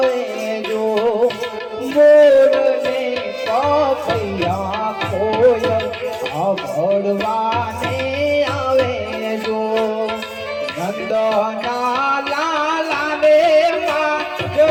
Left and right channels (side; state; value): both; identical; correlation 1.00